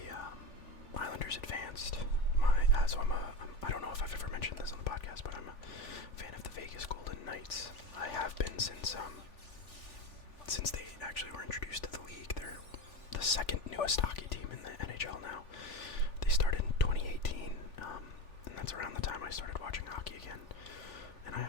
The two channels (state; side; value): late; right; 3.4 ms